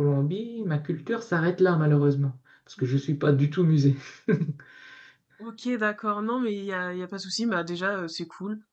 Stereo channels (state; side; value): identical; both; correlation 1.00